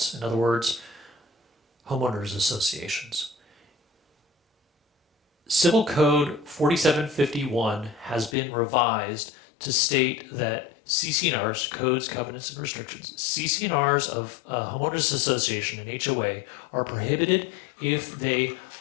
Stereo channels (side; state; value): right; drops out; at 8.3 s